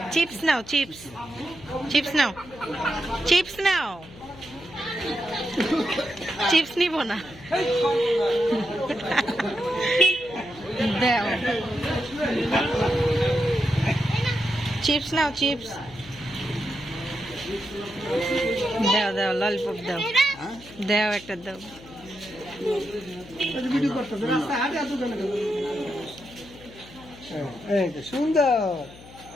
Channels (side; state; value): left; noise; hum, 19 dB below the sound